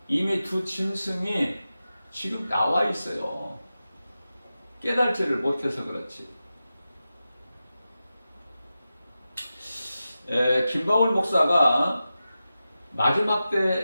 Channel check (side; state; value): both; inverted; correlation -0.93